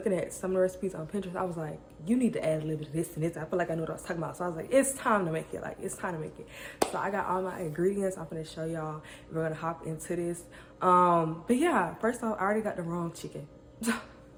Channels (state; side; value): identical; both; correlation 1.00